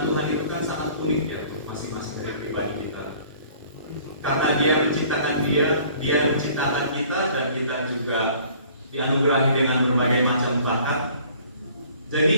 Tuhan itu kan sangat unik ya, masing-masing dari pribadi kita. Karena Dia menciptakan kita dan kita juga dianugerahi dengan berbagai macam bakat.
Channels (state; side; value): inverted; both; correlation -0.53